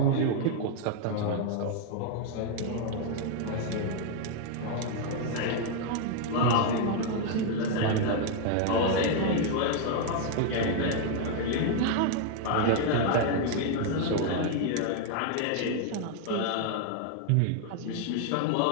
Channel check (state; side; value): different; both; correlation 0.00